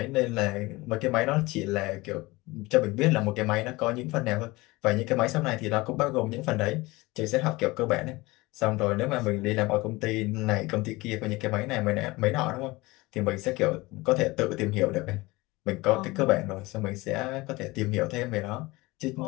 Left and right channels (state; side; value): quieter; right; 21.7 dB